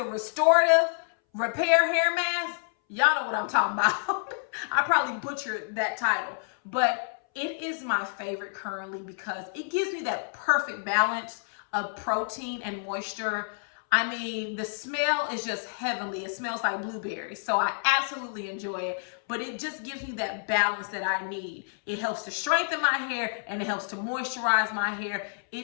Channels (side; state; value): right; silent; 59 dB below the other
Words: Restorative Repair Hair Mask. Y'all know what I'm talking about. I probably butchered that title, but it is my favorite currently because it gives me that perfect balance of protein and moisture. I mean, the smell is just heavenly. It smells like blueberries, so I absolutely enjoy it, but it just gives me that balance that I need. It helps to strengthen my hair and it helps to moisturize my hair.